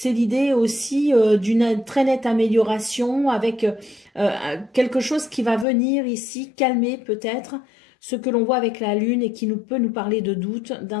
l'idée aussi d'une très nette amélioration avec quelque chose qui va venir ici calmer peut-être ce que l'on voit avec la lune et qui peut nous parler de doute,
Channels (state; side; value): drops out; right; at 5.7 s